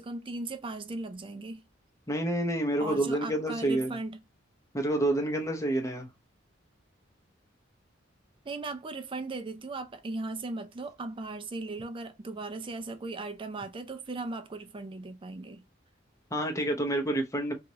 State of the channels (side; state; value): both; normal; correlation 0.61